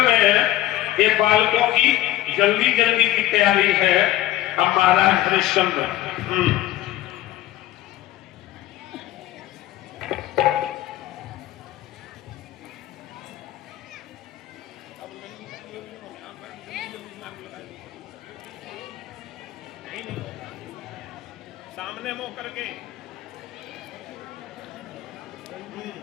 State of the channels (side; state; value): right; quieter; 14.9 dB